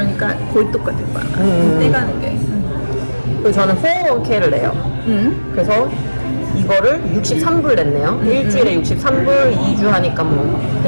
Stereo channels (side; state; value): both; inverted; correlation -1.00